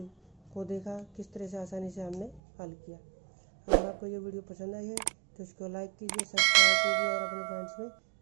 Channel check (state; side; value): drops out; left; at 2.4 s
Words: को देखा किस तरह से आसानी से हमने हल किया। अगर आपको ये वीडियो पसंद आई है तो इसको लाइक कीजिए, सब्सक्राइब कीजिए और अपने फ्रेंड्स में